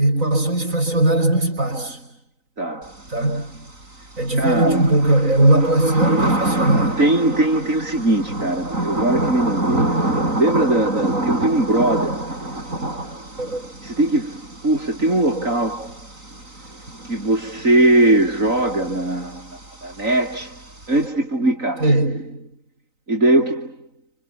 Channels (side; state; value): left; late; 3.9 ms